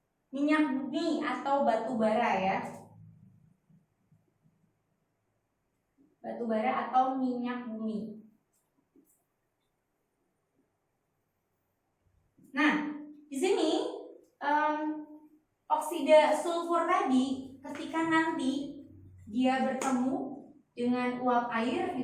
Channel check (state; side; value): identical; both; correlation 1.00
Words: minyak bumi atau batu bara ya. Batu bara atau minyak bumi. Nah, di sini oksida sulfur tadi ketika nanti dia bertemu dengan uap air